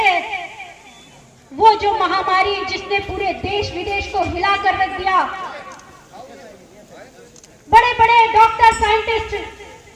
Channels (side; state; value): both; identical; correlation 1.00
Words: वो जो महामारी जिसने पूरे देश विदेश को हिला कर रख दिया, बड़े बड़े डॉक्टर साइंटिस्ट